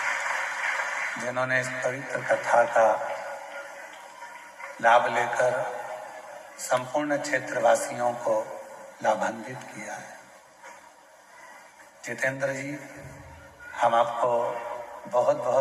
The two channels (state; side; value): identical; both; correlation 1.00